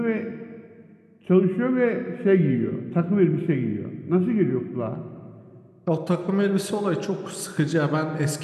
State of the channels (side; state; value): both; identical; correlation 1.00